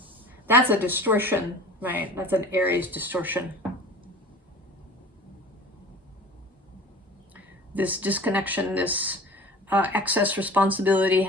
distortion, right? That's an Aries distortion. This disconnection, this excess responsibility,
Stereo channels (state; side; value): normal; both; correlation 0.41